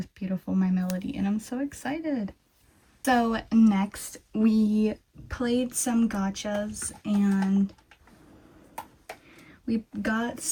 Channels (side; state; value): both; identical; correlation 1.00